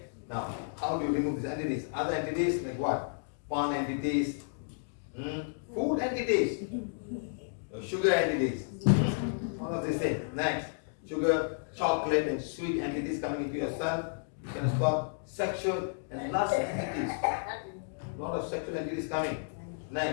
Now, how do you remove these entities? Other entities like what? Pan entities, food entities, sugar entities, all of these things. Next, sugar, chocolate, and sweet entities coming into your cell. You can stop sexual and lust entities. A lot of sexual entities coming.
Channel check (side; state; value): right; silent; digital silence